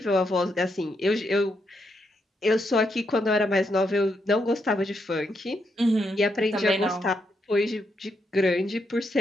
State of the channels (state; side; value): normal; both; correlation 0.80